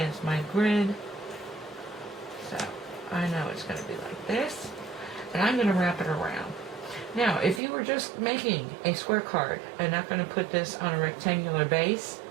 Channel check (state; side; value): drops out; left; at 7.6 s